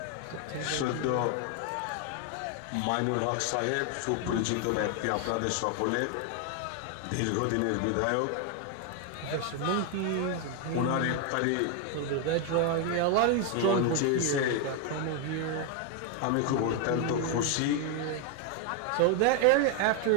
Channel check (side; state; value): both; different; correlation 0.01